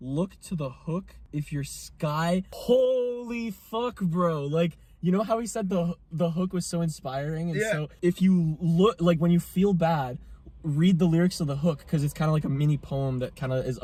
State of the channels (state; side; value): identical; both; correlation 1.00